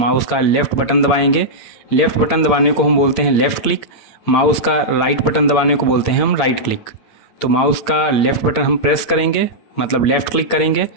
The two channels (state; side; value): late; right; 8.7 ms